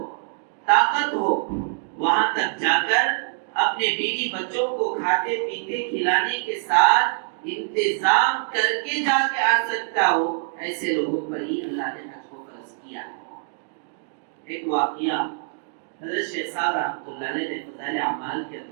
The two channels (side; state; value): left; silent; digital silence